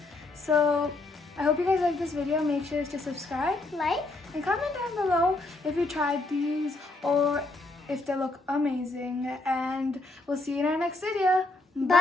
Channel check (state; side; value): quieter; right; 3.0 dB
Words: So I hope you guys like this video. Make sure to subscribe, Like, and comment down below if you tried these or if they look amazing. And we'll see you in our next video.